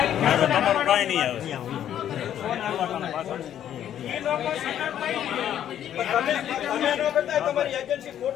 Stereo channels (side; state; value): right; quieter; 10.5 dB